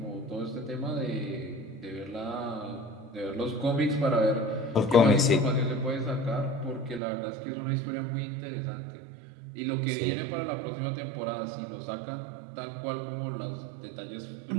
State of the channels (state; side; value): drops out; left; at 7.0 s